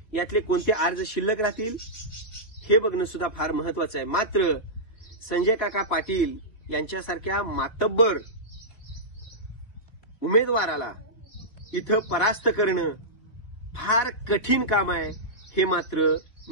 यातले कोणते अर्ज शिल्लक राहतील हे बघणं सुद्धा फार महत्वाचं आहे. मात्र संजय काका पाटील यांच्यासारख्या मातब्बर उमेदवाराला इथं परास्त करणं फार कठीण काम आहे हे मात्र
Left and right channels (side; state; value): right; late; 2.7 ms